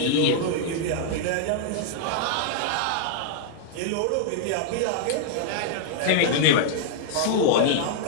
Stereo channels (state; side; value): different; both; correlation -0.01